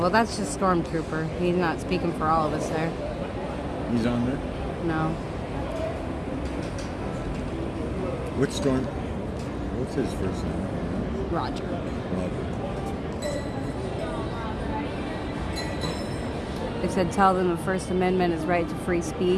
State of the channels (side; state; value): both; identical; correlation 1.00